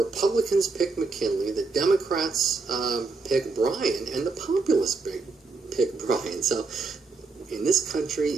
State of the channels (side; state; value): left; quieter; 4.1 dB